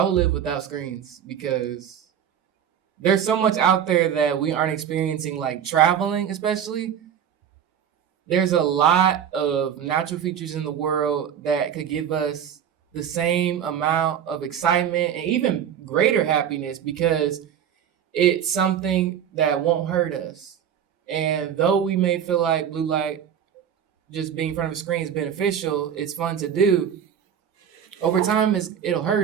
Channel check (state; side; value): quieter; left; 8.9 dB